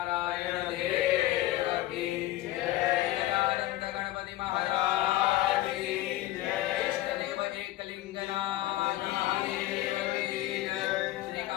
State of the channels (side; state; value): right; quieter; 15.9 dB